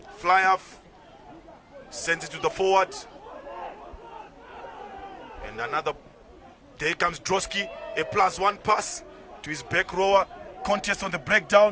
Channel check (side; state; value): both; identical; correlation 1.00